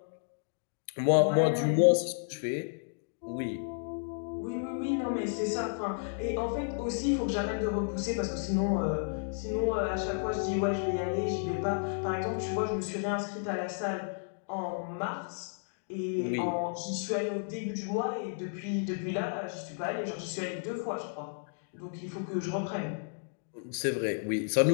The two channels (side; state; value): right; silent; digital silence